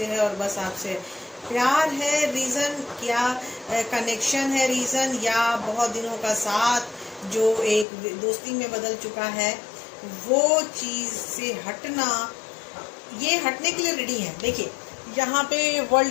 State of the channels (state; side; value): drops out; right; at 7.9 s